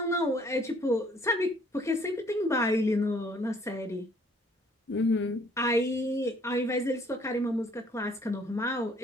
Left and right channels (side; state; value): both; normal; correlation 0.61